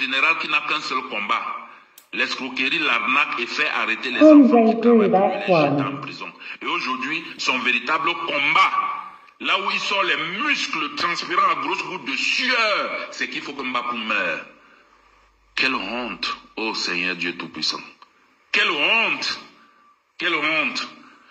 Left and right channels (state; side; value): identical; both; correlation 1.00